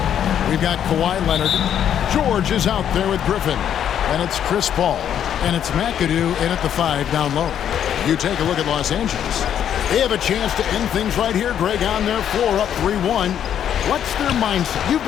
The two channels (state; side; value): quieter; right; 9.6 dB